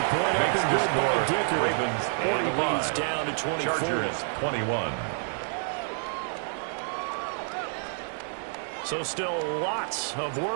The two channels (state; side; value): silent; left; 59 dB below the other